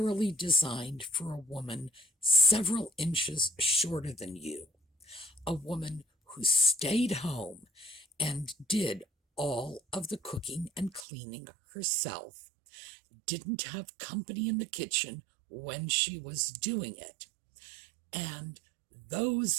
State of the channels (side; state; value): left; drops out; at 11.1 s